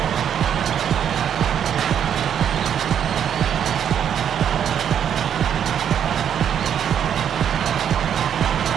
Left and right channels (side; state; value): left; quieter; 8.9 dB